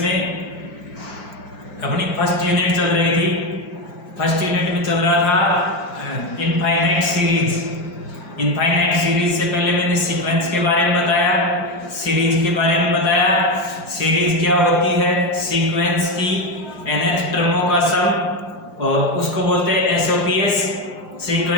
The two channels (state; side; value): late; right; 5.7 ms